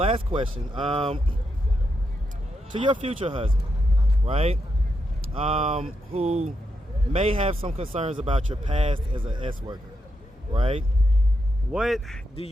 question. To your future husband, right? Who may have some concerns about your past as an S worker, right? What do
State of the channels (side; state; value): both; normal; correlation 0.83